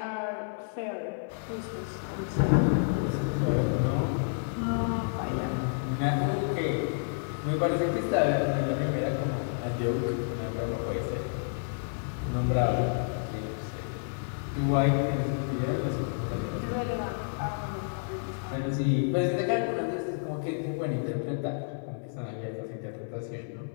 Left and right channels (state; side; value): silent; right; digital silence